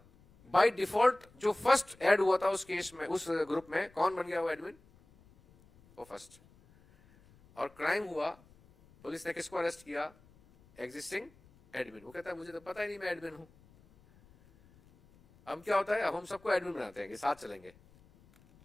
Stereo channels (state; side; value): noise; left; rumble, 28 dB below the sound